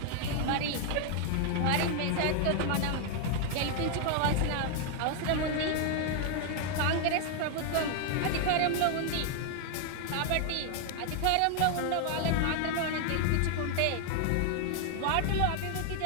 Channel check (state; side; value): different; both; correlation 0.00